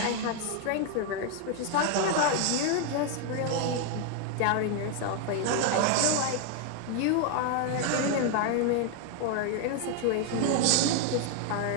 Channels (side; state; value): both; different; correlation 0.01